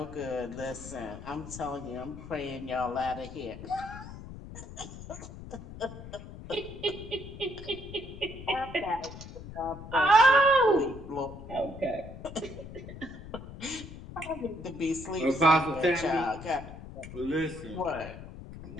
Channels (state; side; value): noise; left; rumble, 13 dB below the sound